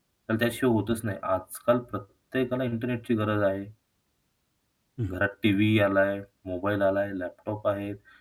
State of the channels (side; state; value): both; identical; correlation 1.00